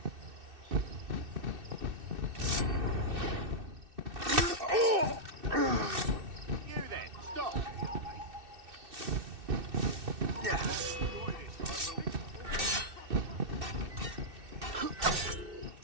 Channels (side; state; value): left; late; 2.6 ms